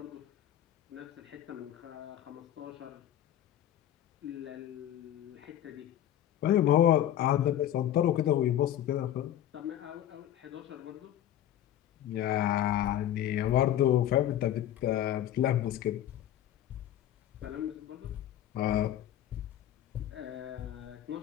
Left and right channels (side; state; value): right; quieter; 11.7 dB